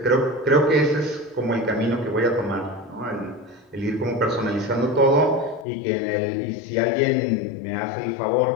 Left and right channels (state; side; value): drops out; right; at 5.7 s